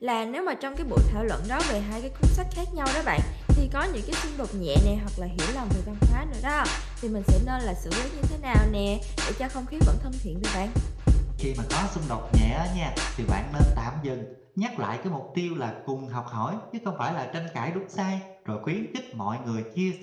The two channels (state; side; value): identical; both; correlation 1.00